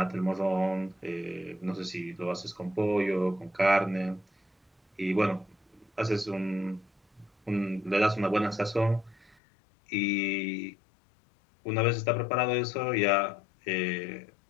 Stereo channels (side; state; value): right; drops out; at 9.3 s